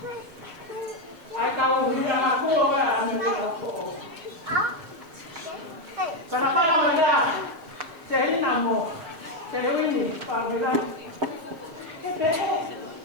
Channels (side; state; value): left; late; 6.3 ms